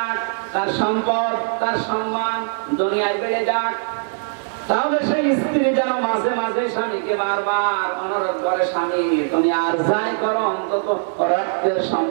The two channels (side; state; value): left; silent; digital silence